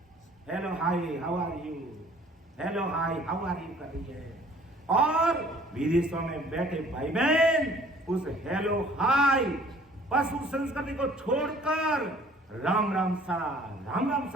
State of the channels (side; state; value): both; normal; correlation 0.54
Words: Hello hi how are you, hello hi how are you कर रही है। और विदेशों में बैठे भाई बहन उस हेलो हाय पशु संस्कृति को छोड़कर राम राम सा